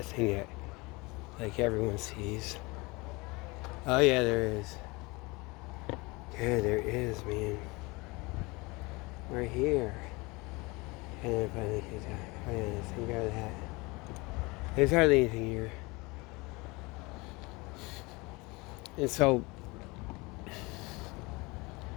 thing that, like everyone sees. Oh yeah, there is. Yeah, there is, man. Right here. And then finally, some guy with a hat. There's hardly anything here. And so,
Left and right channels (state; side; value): quieter; right; 25.0 dB